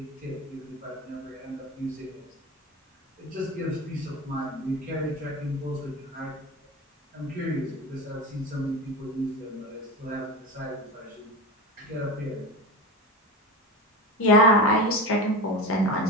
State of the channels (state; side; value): normal; both; correlation 0.25